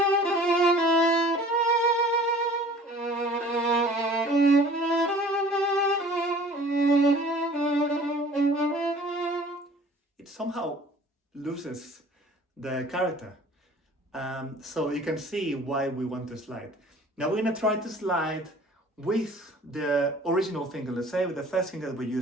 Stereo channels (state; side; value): normal; both; correlation 0.48